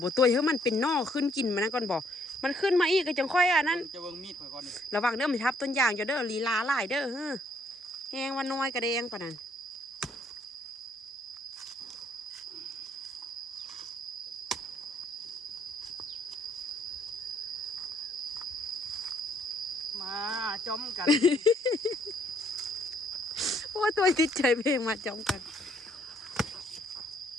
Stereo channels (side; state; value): both; normal; correlation 0.68